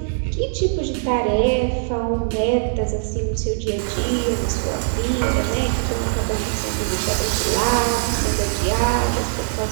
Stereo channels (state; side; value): silent; left; digital silence